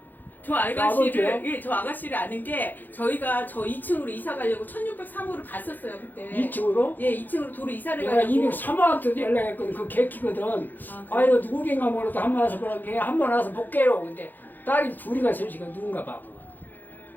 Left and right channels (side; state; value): right; late; 0.087 ms